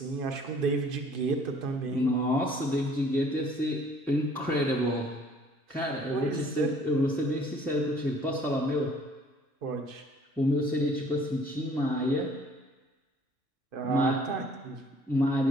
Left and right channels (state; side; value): normal; both; correlation 0.57